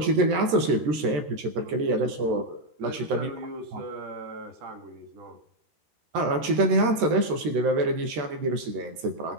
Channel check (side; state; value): left; late; 13 ms